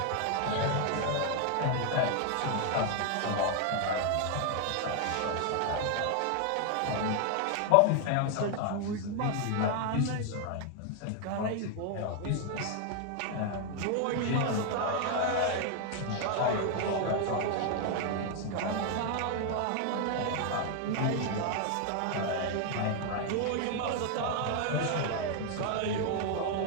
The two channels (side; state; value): both; different; correlation 0.00